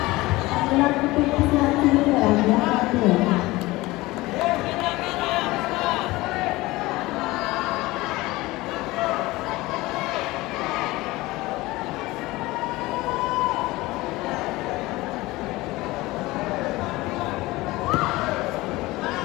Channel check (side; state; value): right; quieter; 20.0 dB